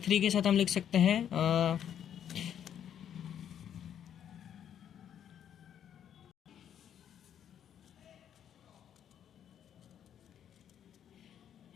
के साथ हम लिख सकते हैं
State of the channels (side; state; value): right; quieter; 9.5 dB